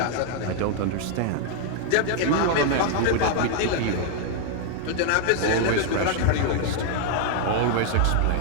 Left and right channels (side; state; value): both; different; correlation 0.00